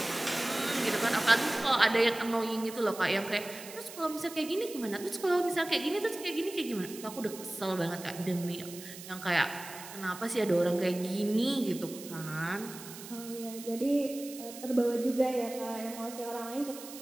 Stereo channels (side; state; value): right; noise; hiss, 14 dB below the sound